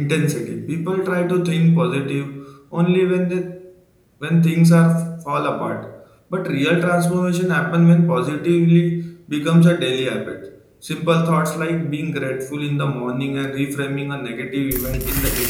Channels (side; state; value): both; identical; correlation 1.00